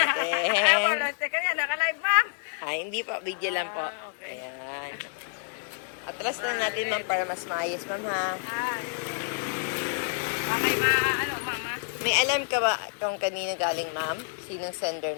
Naka-live, ma'am. Hi, hindi po. Video lang po. Ayan. Atras na natin, ma'am, para mas maayos, ma'am, ha? Okay, ano, mama? May alam ka ba kung kanino galing, ma'am? Sinong sender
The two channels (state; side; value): silent; right; 59 dB below the other